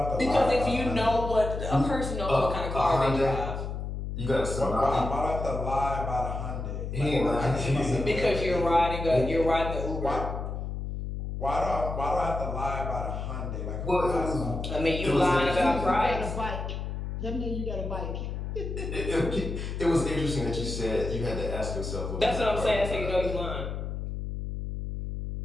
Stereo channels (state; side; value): noise; left; hum, 5 dB below the sound